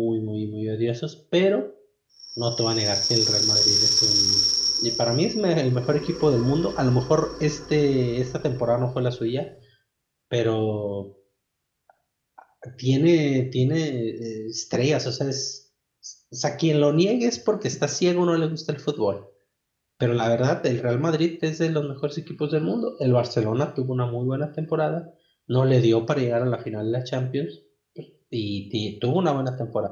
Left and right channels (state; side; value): identical; both; correlation 1.00